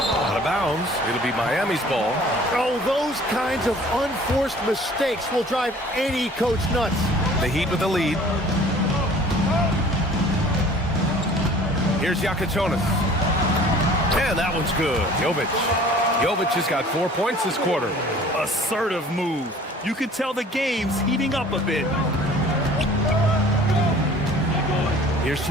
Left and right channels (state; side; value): normal; both; correlation 0.49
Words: of bounds. It'll be Miami's ball. Oh, those kinds of unforced mistakes will drive any coach nuts. The Heat with the lead. Here's Jakic. And that one's good. Jovic has got 4 points this quarter. Assertive move. You can tell the game's heating up a bit. Here's